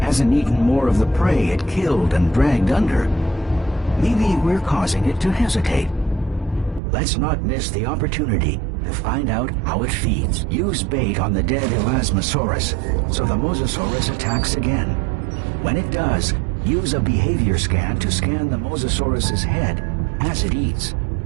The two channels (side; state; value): left; drops out; at 6.8 s